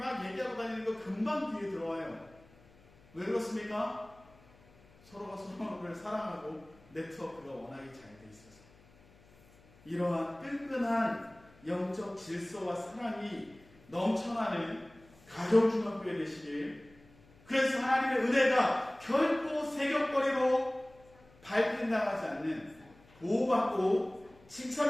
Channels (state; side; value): noise; left; hum, 27 dB below the sound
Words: 얘기하고 다니는 거 금방 귀에 들어와요. 왜 그렇습니까? 서로가 서로를 사랑하고 네트워크가 워낙에 잘 돼 있어서. 이러한 끈끈한 영적 질서와 사랑이 넘쳐나는 가정중학교에 되시길, 그래서 하나님의 은혜가 결코 세격거리로 밟힌당하지 않는, 보호받고